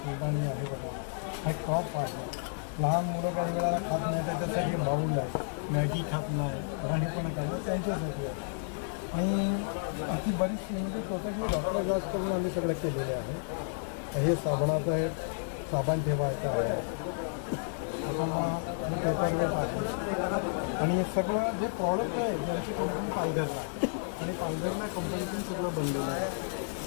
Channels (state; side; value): silent; right; 57 dB below the other